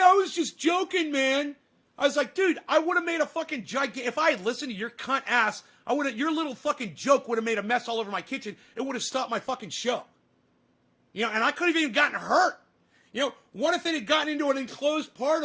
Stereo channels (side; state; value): both; identical; correlation 1.00